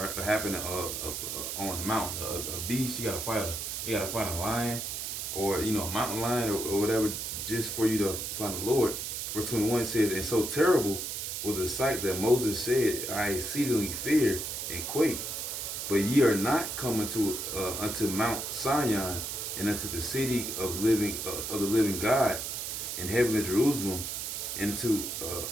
happening on the mountain. A beast, you gotta fight a lion, or a mountain lion or whatever, just for you to find the Lord. Verse 21 says, "And so terrible was the sight that Moses said, I exceedingly fear and quake. But ye are not coming to unto Mount Sion, and unto the city of the living God, in heavenly Jerusalem, and to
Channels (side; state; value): right; noise; hiss, 4 dB below the sound